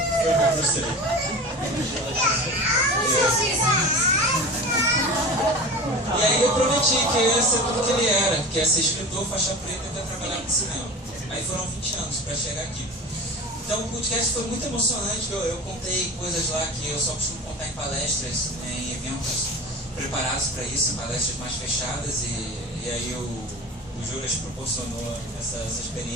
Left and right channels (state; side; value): normal; both; correlation 0.33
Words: o Bruce Lee. E aí eu prometi que eu ia ser tudo que ele era, que ia ser escritor, faixa preta e ia trabalhar no cinema. Aí foram 20 anos pra chegar aqui. Então o podcast foi muito emocionante, eu contei coisas lá que eu só costumo contar em palestras, em eventos preparados para isso, em palestras mais fechadas, e aí o Juras proporcionou essa